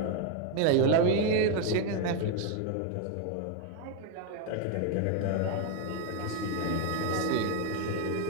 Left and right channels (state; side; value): different; both; correlation 0.01